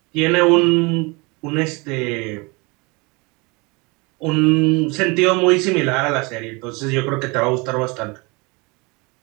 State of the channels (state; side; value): quieter; left; 27.6 dB